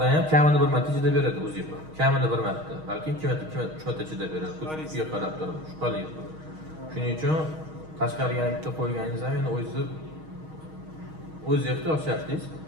ham kamini bir marta chidab beradi uzib. Kamini bir marta, balki 2 marta, 3 marta chidab beradi. Kuchga qarab turib, shubhali. Shuning uchun tashqariga bitta qo'yganingiz ham endi o'z ehtiyoj shartingiz.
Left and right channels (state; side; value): late; left; 6.4 ms